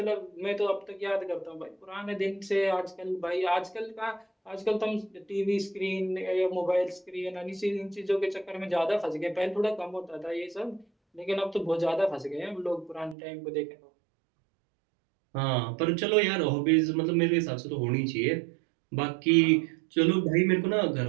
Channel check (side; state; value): left; drops out; at 13.2 s